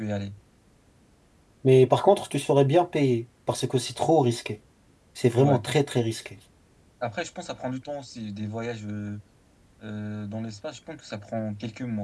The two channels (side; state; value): both; identical; correlation 1.00